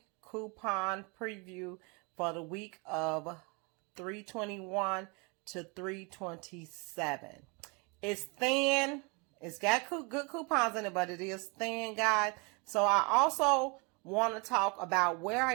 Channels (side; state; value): left; quieter; 30.9 dB